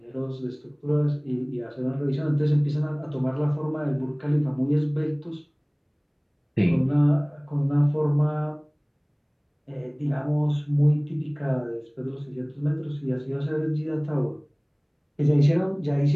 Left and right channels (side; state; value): both; identical; correlation 1.00